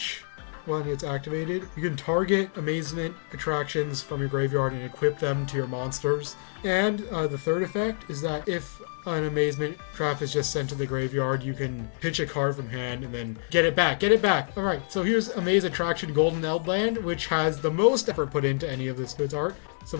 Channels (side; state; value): right; silent; digital silence